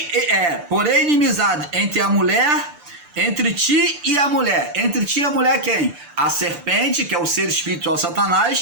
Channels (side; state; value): left; late; 6.8 ms